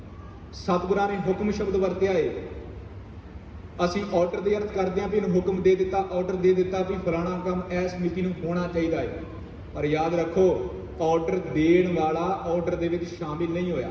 ਸਤਿਗੁਰਾਂ ਨੇ ਹੁਕਮ ਸ਼ਬਦ ਵਰਤਿਆ ਹੈ, ਅਸੀਂ ਆਰਡਰ ਦੇ ਅਰਥ ਕਰਦੇ ਹਾਂ ਵੀ ਇਹਨੂੰ ਹੁਕਮ ਦੇ ਦਿੱਤਾ, ਆਰਡਰ ਦੇ ਦਿੱਤਾ ਵੀ ਫਲਾਣਾ ਕੰਮ ਇਸ ਮਿਤੀ ਨੂੰ ਹੋਣਾ ਚਾਹੀਦਾ ਹੈ। ਪਰ ਯਾਦ ਰੱਖੋ ਆਰਡਰ ਦੇਣ ਵਾਲਾ ਆਰਡਰ ਦੇ ਵਿੱਚ ਸ਼ਾਮਿਲ ਨਹੀਂ ਹੋਇਆ।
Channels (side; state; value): both; identical; correlation 1.00